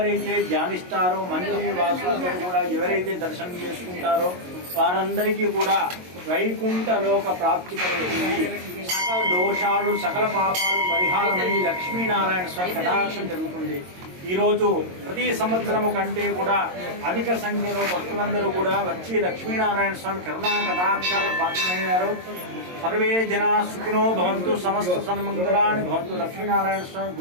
ధ్యానిస్తారో మందిర వాసులందరూ కూడా ఎవరైతే దర్శనం చేసుకుంటారో వారందరికీ కూడా వైకుంఠ లోక ప్రాప్తి కలుగుతుంది। సకల దోషాలు సకల పాపాలు పరిహారమై లక్ష్మీనారాయణ స్వామి కటాక్షం జరుగుతుంది। ఈరోజు ప్రతి సంవత్సరము కంటే కూడా అధిక సంఖ్యలో భక్తులందరూ కూడా వచ్చి లక్ష్మీనారాయణ స్వామి కరుణా కటాక్షాలు పాత్రమయ్యారు। సర్వే జనా సుఖినో భవంతు, సమస్త సన్మంగళాని భవంతు। లక్ష్మీనారాయణ స్వామి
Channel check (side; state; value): left; late; 22 ms